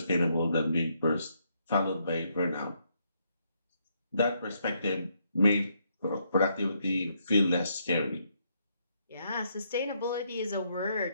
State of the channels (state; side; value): inverted; both; correlation -0.75